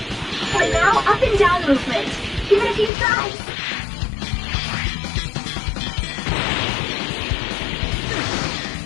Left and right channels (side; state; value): right; drops out; at 2.9 s